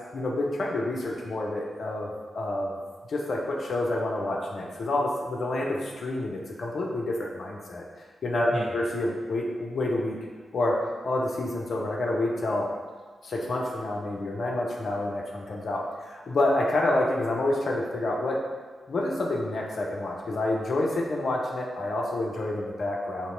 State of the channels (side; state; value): both; normal; correlation 0.87